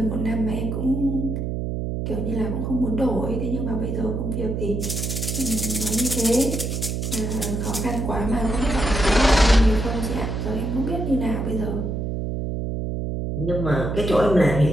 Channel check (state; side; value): noise; right; hum, 2 dB below the sound